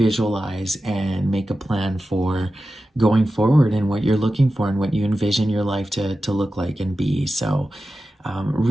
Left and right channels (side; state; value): both; normal; correlation 0.93